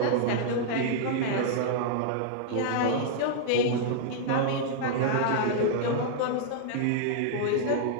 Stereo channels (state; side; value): different; both; correlation -0.01